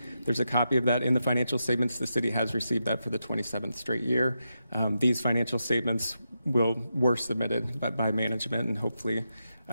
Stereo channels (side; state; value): both; inverted; correlation -0.87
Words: There's a copy of that in the financial statements. The city has received that for the 27th straight year. These financial statements were submitted by management and hopefully